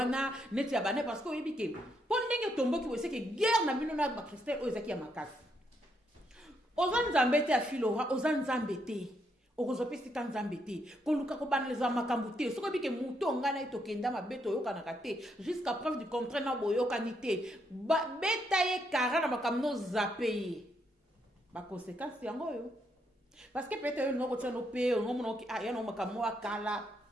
neti ya bane parce que oyebike. Pon ndenge tombo ki wese ke guerre na bino na ba Christelle o ezaki ya makasi. Ozan nzambete ya filora, ozan nzambete. Okozopesi kanzambete koluka ko banaliza makambo te soko bike muto ngana ito kenda mabeto yoka na kate jusqu'à preuve du contraire na boyoka ni te beta ye kara na makamno zape ba conséquence yango yo parce que peut-être yo ngoko tsano pe ngomo no ki ya no makamno akala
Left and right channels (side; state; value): both; normal; correlation 0.77